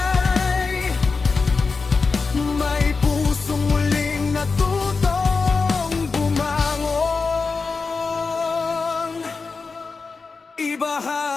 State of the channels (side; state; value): right; quieter; 4.5 dB